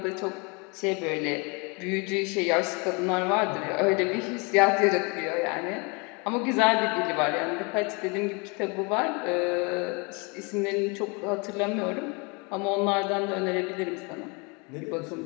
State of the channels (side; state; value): right; quieter; 30.1 dB